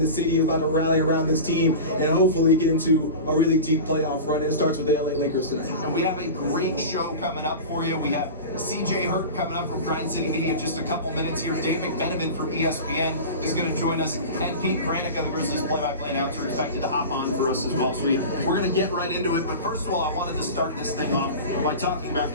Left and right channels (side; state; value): both; inverted; correlation -0.31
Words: city is about to rally around this team and hopefully get into a really deep playoff run. And it starts with the LA Lakers tonight. And we have a great show coming up for you. We have CJ Hurt coming up from Grind City Media in just a couple minutes here. Dave McMenamin from ESPN is going to join us, and Pete Granica, the Grizzlies play-by-play announcer, expected to hop on for us as well. So we're going to get right into it. But first of all, I wanted to start this thing off by talking about